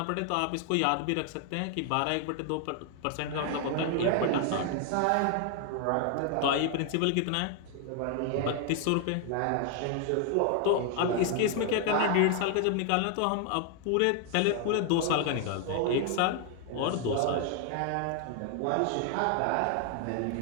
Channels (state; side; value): different; both; correlation 0.00